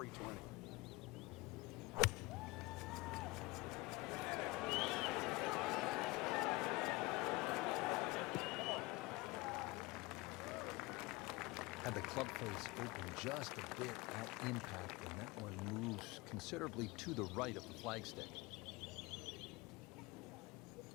Had the club face open just a bit at impact, and that one moves considerably to the right of the flagstick.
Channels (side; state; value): right; quieter; 22.8 dB